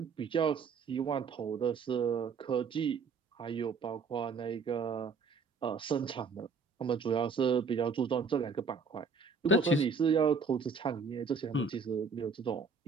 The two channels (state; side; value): quieter; left; 5.1 dB